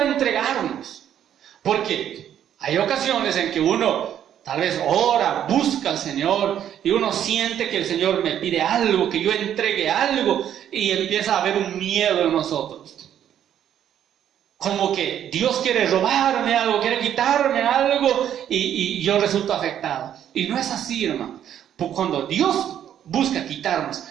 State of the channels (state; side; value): quieter; left; 10.1 dB